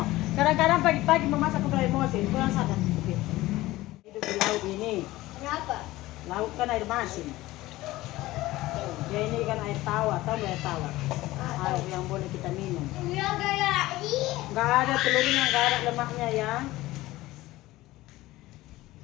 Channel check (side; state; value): right; quieter; 17.7 dB